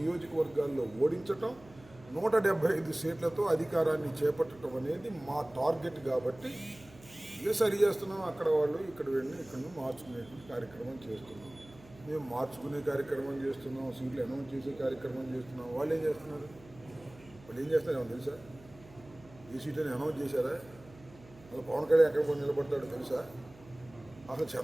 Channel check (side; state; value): right; noise; hum, 22 dB below the sound